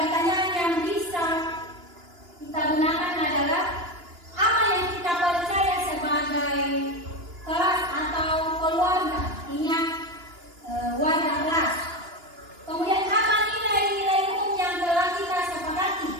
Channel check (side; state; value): left; late; 2.9 ms